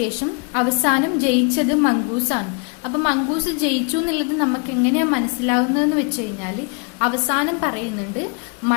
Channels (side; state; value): right; quieter; 35.5 dB